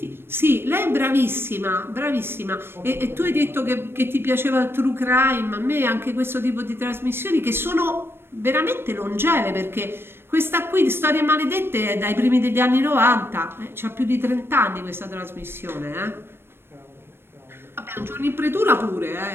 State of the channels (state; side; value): late; left; 0.11 ms